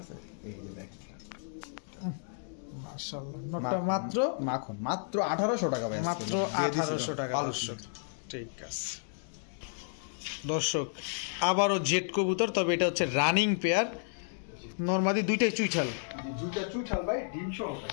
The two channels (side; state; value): right; silent; digital silence